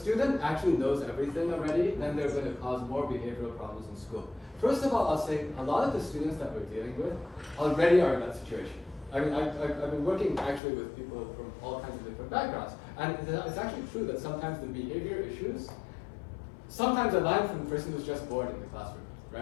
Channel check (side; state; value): right; drops out; at 10.6 s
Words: actually knows everything already, then they're going to cause more behavioral problems in school. First of all, I'll say a lot of the students that we're dealing with already are in that situation. I mean, I've been working actually with people from all kinds of different backgrounds, and it's actually true that sometimes the behavior issues sometimes align from the person who's just bored in the classroom,